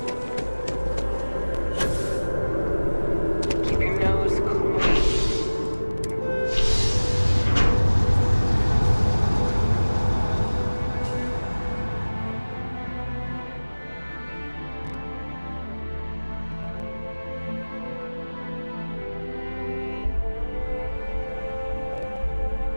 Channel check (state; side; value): inverted; both; correlation -1.00